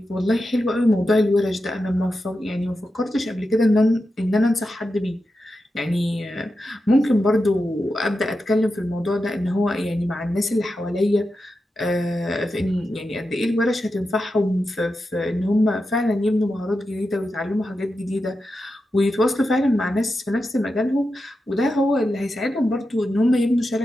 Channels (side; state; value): both; normal; correlation 0.89